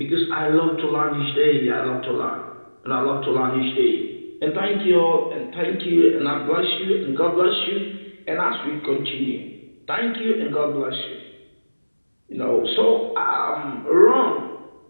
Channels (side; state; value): both; inverted; correlation -1.00